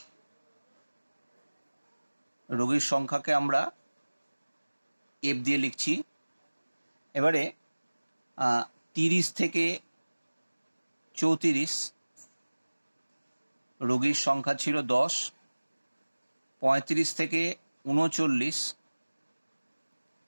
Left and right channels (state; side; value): inverted; both; correlation -1.00